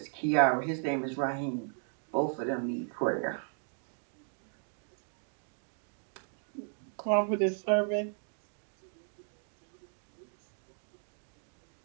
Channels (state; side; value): silent; left; 54 dB below the other